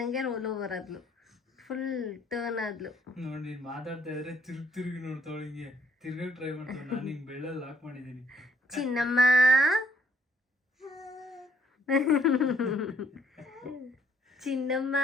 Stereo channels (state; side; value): normal; both; correlation 0.66